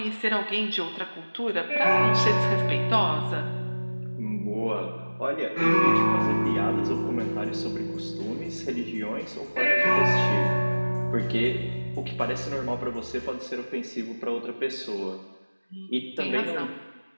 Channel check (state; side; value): inverted; both; correlation -1.00